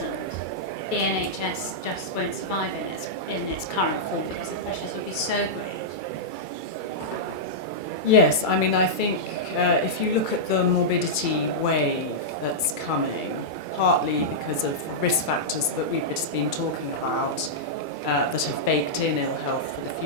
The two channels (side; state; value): right; late; 2.3 ms